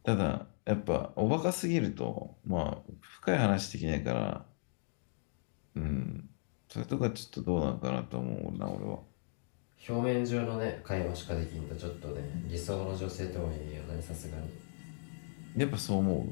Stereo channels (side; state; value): right; silent; digital silence